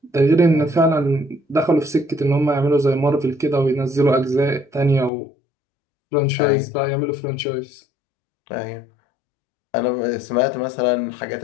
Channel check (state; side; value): drops out; right; at 5.1 s